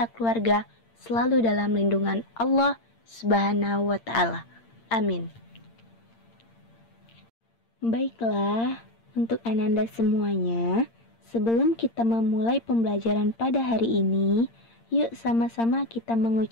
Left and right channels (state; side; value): late; right; 8.7 ms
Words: keluarga selalu dalam lindungan Allah Subhanahu wa ta'ala. Amin. Baiklah, untuk Ananda semuanya, sebelum kita memulai pembelajaran pada hari ini, yuk sama-sama kita